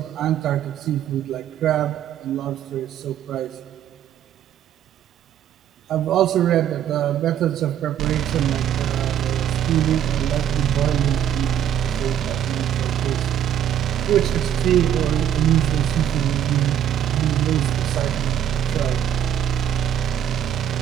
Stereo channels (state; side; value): quieter; left; 10.1 dB